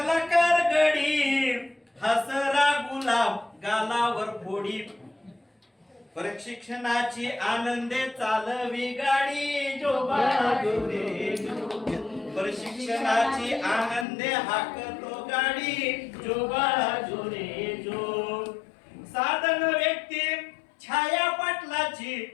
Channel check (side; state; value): right; drops out; at 14.1 s